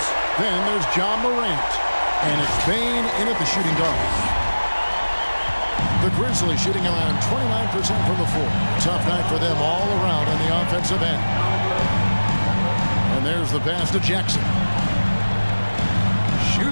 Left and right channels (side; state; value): both; inverted; correlation -1.00